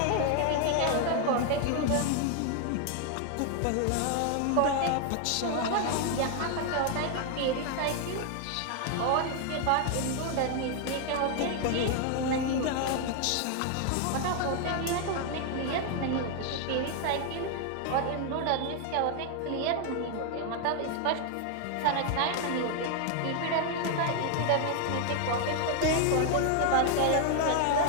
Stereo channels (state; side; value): different; both; correlation 0.00